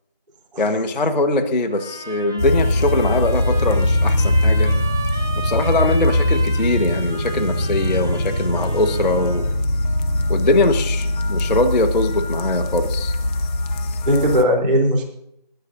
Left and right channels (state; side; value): inverted; both; correlation -0.50